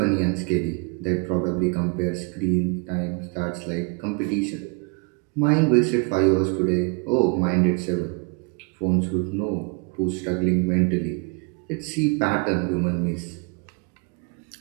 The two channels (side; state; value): left; quieter; 33.4 dB